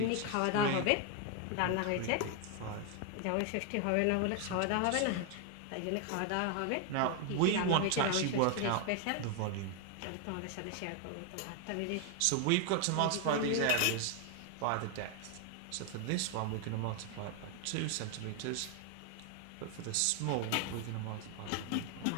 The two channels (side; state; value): both; different; correlation 0.00